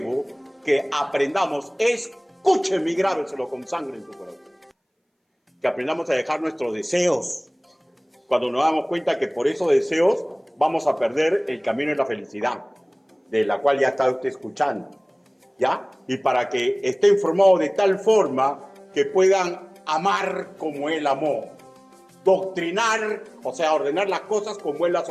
que aprendamos, escúcheme y grábeselo con sangre en tu corazón, que aprendamos a dejar nuestros deseos, cuando nos damos cuenta que por esos deseos vamos a perder el camino de la felicidad, de la cual ya está usted escuchando, ¿ya? Y para que esté informado de tal forma que puedan amar como él amó, doctrinar, o sea, ordenar las cosas como él las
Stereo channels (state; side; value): identical; both; correlation 1.00